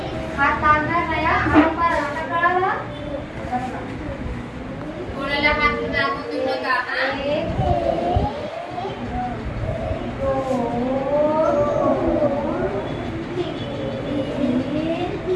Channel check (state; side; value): identical; both; correlation 1.00